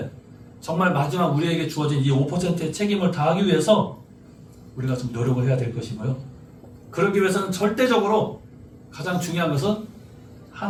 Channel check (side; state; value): both; identical; correlation 1.00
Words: 정말 마지막 우리에게 주어진 이 5%의 책임을 다하기 위해서 우리가 좀 노력을 해야 될 것이고요. 그러기 위해서는 절대적으로 가장 중요한 것은